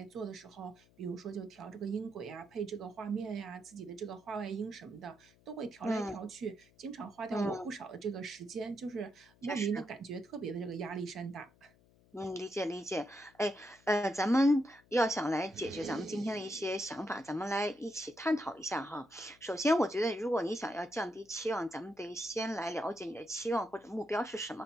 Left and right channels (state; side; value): noise; left; hum, 29 dB below the sound